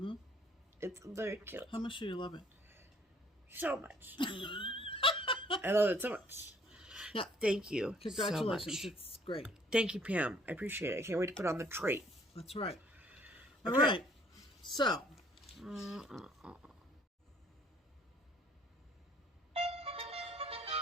It's very cute. How much do you love it? So much. I love it so much. Yeah. Thank you. Congratulations. So much. It's great. Thank you, Pam. I appreciate it. I can't wait to put on the tray. That's right. All right. So.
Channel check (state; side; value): normal; both; correlation 0.61